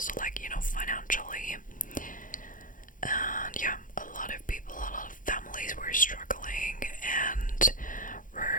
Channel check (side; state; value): right; late; 0.39 ms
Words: like, you know, financially. And yeah, a lot of people, a lot of families were struggling and